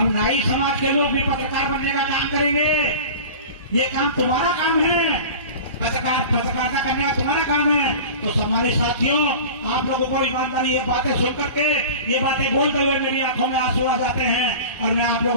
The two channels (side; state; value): both; inverted; correlation -0.36